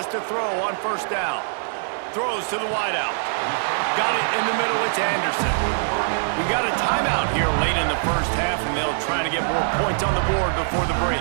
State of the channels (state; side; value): silent; left; 62 dB below the other